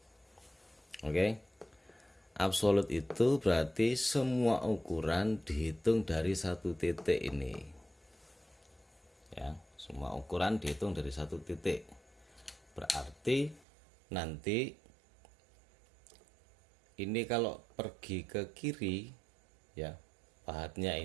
Oke. Absolut itu berarti semua ukuran dihitung dari satu titik ini. Ya, semua ukuran dihitung dari satu titik. Berarti nanti ini kalau pergi ke kiri ya, pahatnya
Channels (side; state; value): left; drops out; at 13.7 s